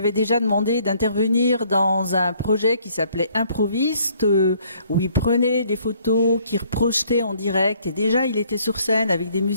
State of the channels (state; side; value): inverted; both; correlation -0.63